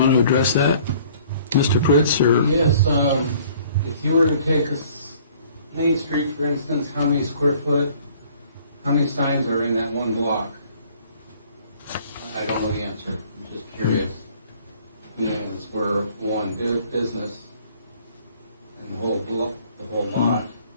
address that, Mr. Pritz, or? Yes, if you were to take Main Street, for instance, how many signs are in that one block? I don't know the answer. I'm just curious. It's where one business and the whole block, the whole lot,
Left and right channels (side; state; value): both; inverted; correlation -0.56